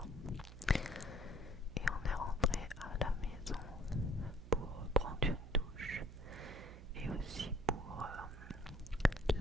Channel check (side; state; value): right; noise; hum, 14 dB below the sound